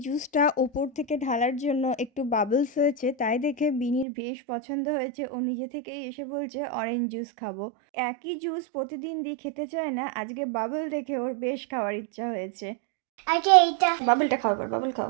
জুসটা ওপর থেকে ঢালার জন্য একটু বাবলস হয়েছে, তাই দেখে বিনির বেশ পছন্দ হয়েছে। ও নিজে থেকেই এসে বলছে অরেঞ্জ জুস খাবো। একই জুস প্রতিদিন দিয়ে খেতে চায় না, আজকে বাবল দেখে ওর বেশ খাওয়ার ইচ্ছা হয়েছে। আগে এইটা বাবলটা খাও, এবার বাবল খাও।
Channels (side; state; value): left; drops out; at 4.0 s